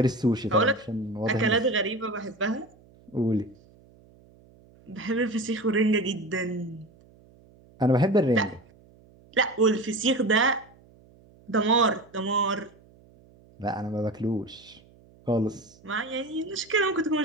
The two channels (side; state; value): right; noise; hum, 27 dB below the sound